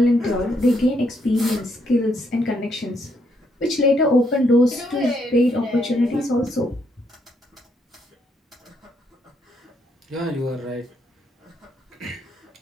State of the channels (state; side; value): normal; both; correlation 0.74